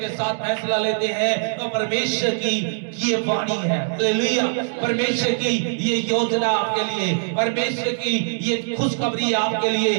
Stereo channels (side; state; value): left; silent; digital silence